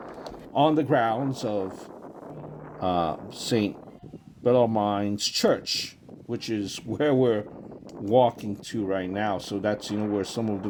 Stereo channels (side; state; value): both; identical; correlation 1.00